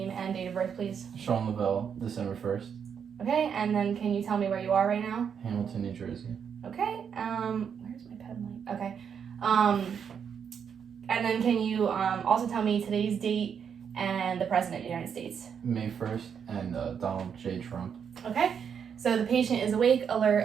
and date of birth, please? Sean Lavelle, December 1st. Okay, and then can you tell me where you are right now? Hamilton, New Jersey. Okay, where's my pen light? Okay, and then can you also tell me today's date and the President of the United States? May 1st and Donald J. Trump. Okay, so the patient is awake, alert,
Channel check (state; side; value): quieter; left; 7.4 dB